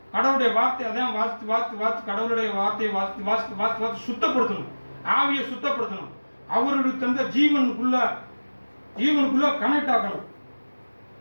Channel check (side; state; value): both; inverted; correlation -1.00